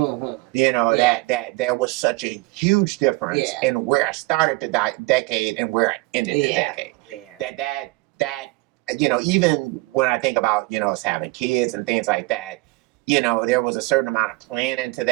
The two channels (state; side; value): quieter; left; 23.9 dB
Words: You know, Yeah. that there was such a huge difference Yeah. in where I started the decade and where I ended the Yeah. decade. Yeah. That you know, even when I think about, you know, us having kids and things like that, you know, there was a certain amount of planning to